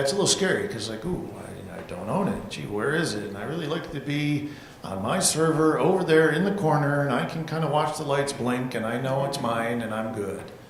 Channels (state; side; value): identical; both; correlation 1.00